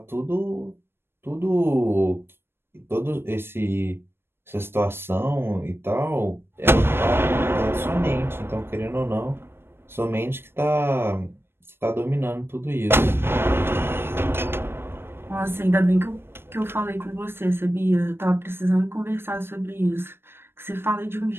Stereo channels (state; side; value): late; left; 0.11 ms